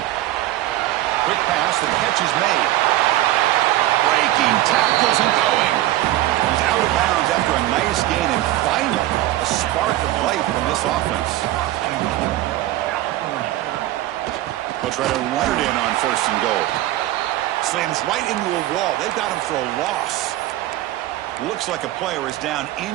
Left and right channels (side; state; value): left; quieter; 15.4 dB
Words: Quick pass, the catch is made. Breaking tackles and going. He's out of bounds after a nice gain, and finally a spark of light from this offense. They'll try to run it in on 1st and goal. Slams right into a wall. They've got him for a loss. Looks like a player is down